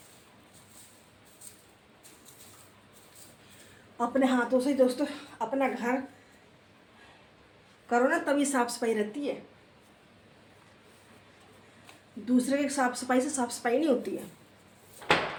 अपने हाथों से ही दोस्तों अपना घर करो ना, तभी साफ सफाई रहती है। दूसरे के साफ सफाई से साफ सफाई नहीं होती है।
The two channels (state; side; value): identical; both; correlation 1.00